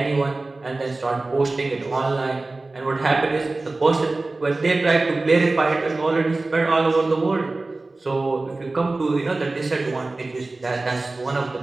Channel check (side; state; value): left; quieter; 3.2 dB